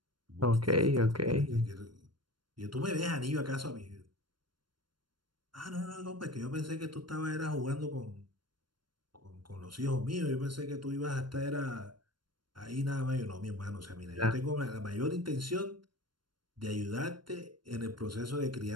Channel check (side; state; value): left; late; 0.72 ms